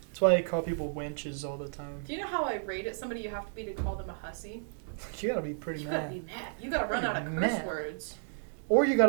That's why I call people wenches all the time. Do you know how irate at somebody you have to be to call them a hussy? You gotta be pretty You mad. gotta be mad. You gotta run out of curse Mad. words. Or you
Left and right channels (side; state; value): left; silent; digital silence